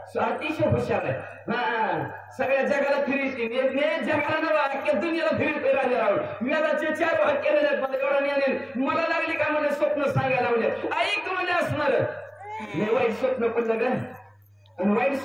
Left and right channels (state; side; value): identical; both; correlation 1.00